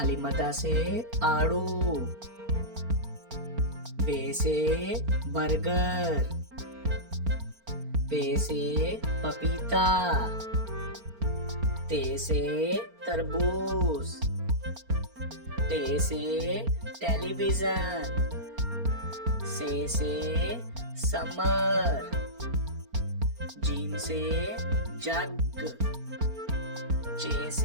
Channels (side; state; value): left; late; 4.4 ms